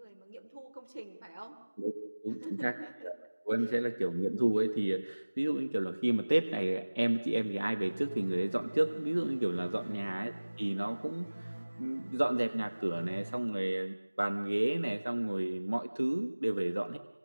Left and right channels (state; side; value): inverted; both; correlation -1.00